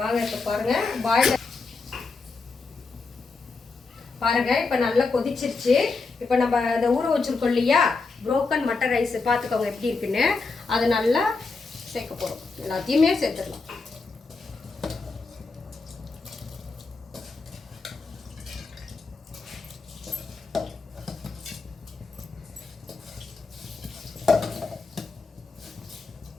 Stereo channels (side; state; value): right; quieter; 4.2 dB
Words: இப்போ பாருங்கள் பாயில் பாருங்க. இப்போ நல்லா கொதிச்சிருச்சு. இப்போ நம்ம அதை ஊற வச்சுருக்கோம் இல்லையா புரோக்கன் மட்டர் ரைஸ், பார்த்துக்கோங்க எப்படி இருக்குன்னு. அதை நல்லா சேர்க்க போகிறோம். எல்லாத்தையுமே சேர்த்துடலாம்.